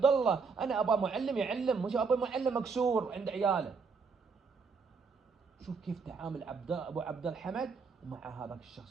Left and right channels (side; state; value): left; quieter; 5.1 dB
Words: الله. انا ابغى معلم يعلم، مش ابغى معلم مكسور عند عياله. شوف كيف تعامل ابو عبد الحمد مع هذاك